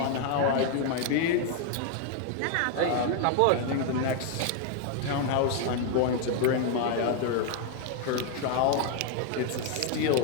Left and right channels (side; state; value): both; different; correlation 0.01